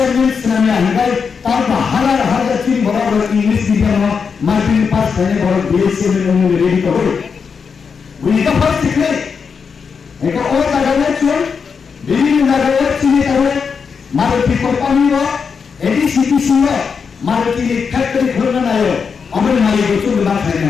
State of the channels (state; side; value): quieter; right; 5.9 dB